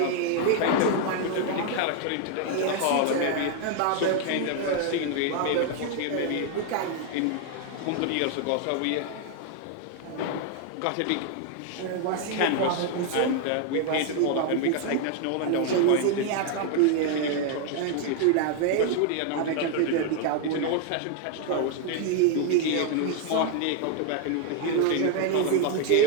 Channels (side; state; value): both; different; correlation 0.00